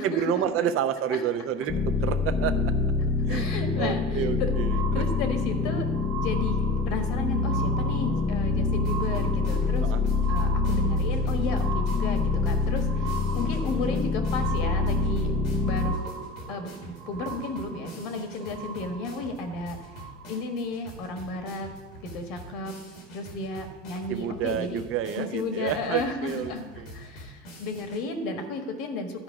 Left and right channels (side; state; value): both; normal; correlation 0.32